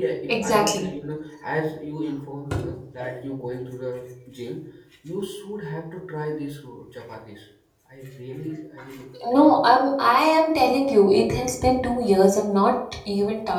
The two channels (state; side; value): identical; both; correlation 1.00